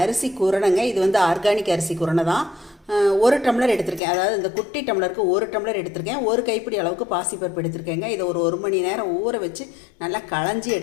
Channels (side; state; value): right; drops out; at 4.0 s